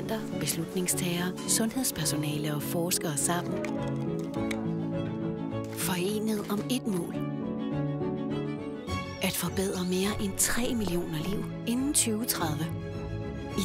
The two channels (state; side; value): identical; both; correlation 1.00